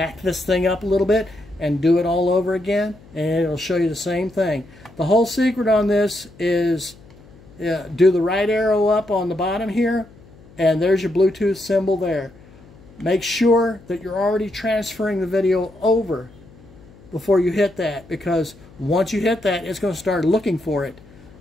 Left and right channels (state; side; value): noise; left; hum, 24 dB below the sound